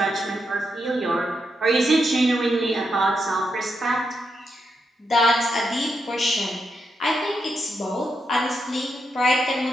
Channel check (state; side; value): normal; both; correlation 0.83